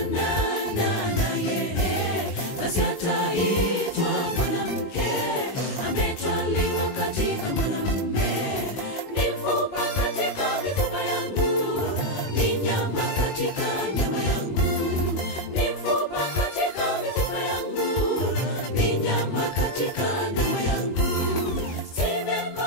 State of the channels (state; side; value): late; right; 21 ms